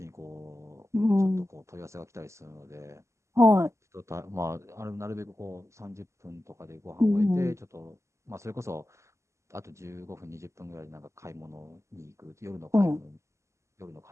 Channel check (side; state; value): left; late; 0.14 ms